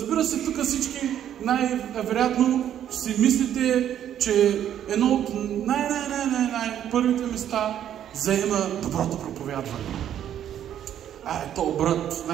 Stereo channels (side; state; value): left; quieter; 10.4 dB